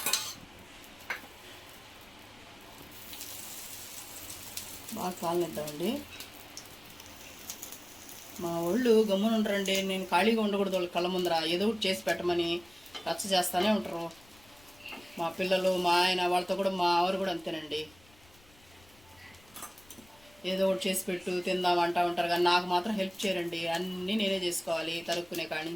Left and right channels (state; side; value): noise; left; rumble, 27 dB below the sound